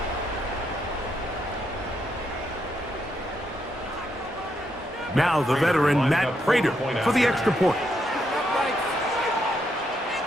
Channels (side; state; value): both; normal; correlation 0.78